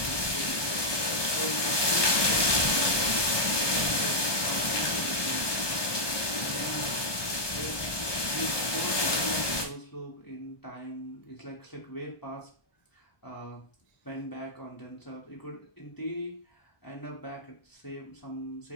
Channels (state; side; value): late; right; 1.2 ms